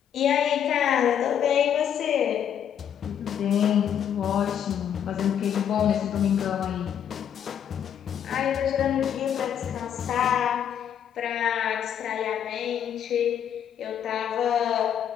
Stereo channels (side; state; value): right; quieter; 9.0 dB